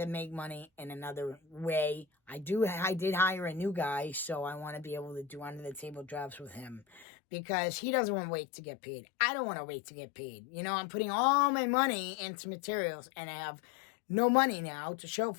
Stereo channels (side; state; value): right; drops out; at 7.1 s